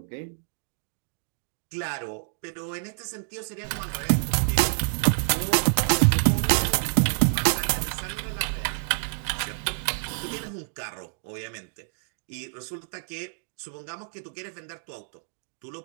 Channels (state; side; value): silent; left; digital silence